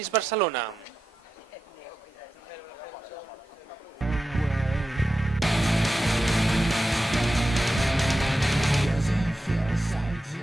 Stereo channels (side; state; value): both; normal; correlation 0.90